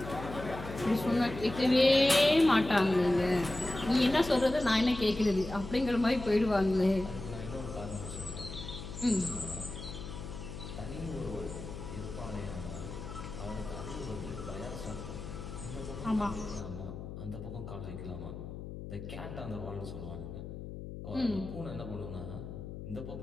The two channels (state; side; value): noise; left; hum, 9 dB below the sound